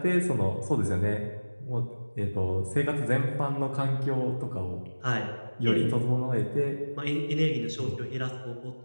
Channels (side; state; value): both; inverted; correlation -1.00